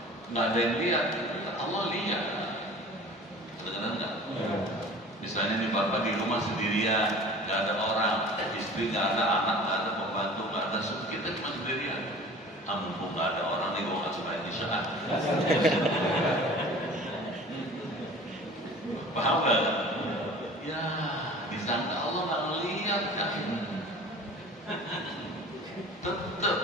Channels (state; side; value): normal; both; correlation 0.43